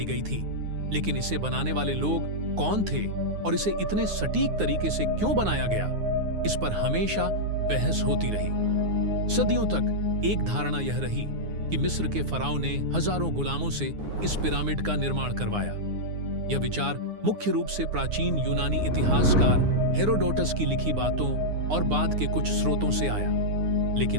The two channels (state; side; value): late; left; 9.6 ms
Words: गई थी, लेकिन इसे बनाने वाले लोग कौन थे और इसे इतने सटीक तरीके से क्यों बनाया गया, इस पर हमेशा बहस होती रही। सदियों तक एक धारणा यह रही कि मिस्र के फराओं ने हजारों गुलामों से इस पिरामिड का निर्माण करवाया। यह विचार मुख्य रूप से प्राचीन यूनानी इतिहासकार हेरोडोटस की लिखी बातों और बाद के कुछ स्रोतों से आया,